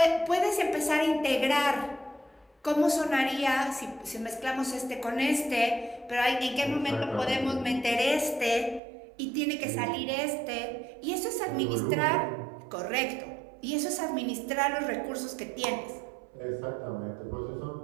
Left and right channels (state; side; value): drops out; left; at 8.8 s